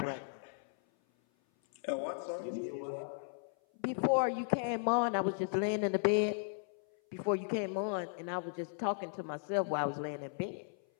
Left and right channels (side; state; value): right; silent; 54 dB below the other